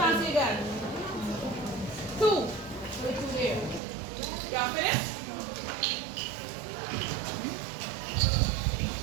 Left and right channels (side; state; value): left; drops out; at 3.8 s